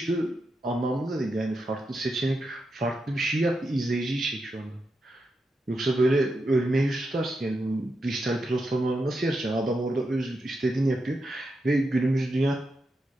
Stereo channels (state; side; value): normal; both; correlation 0.86